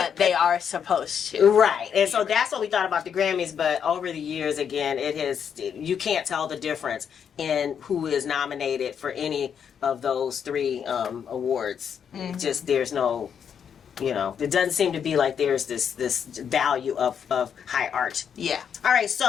they are supposed to. Right. And so that's what we thought about the Grammys, but over the years, again, you can't tell the difference in who is nominated for any of those three awards. Just, there's no, it doesn't seem to be like there's this value of high art. Yeah. All right,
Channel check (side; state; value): right; quieter; 7.7 dB